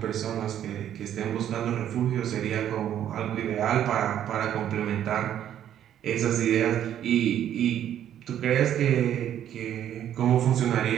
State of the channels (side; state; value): left; quieter; 10.6 dB